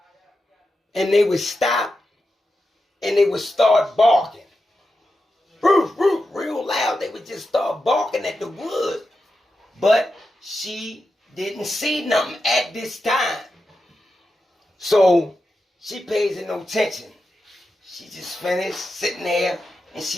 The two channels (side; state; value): both; normal; correlation 0.89